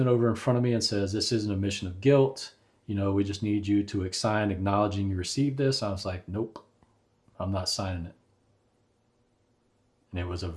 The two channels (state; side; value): identical; both; correlation 1.00